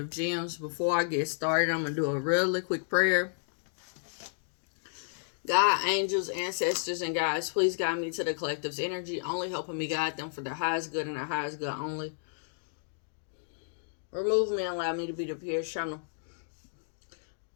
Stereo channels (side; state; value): right; silent; digital silence